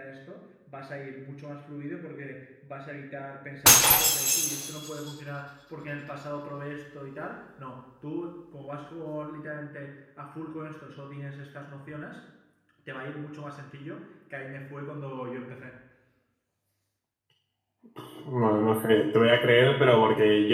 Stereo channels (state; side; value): identical; both; correlation 1.00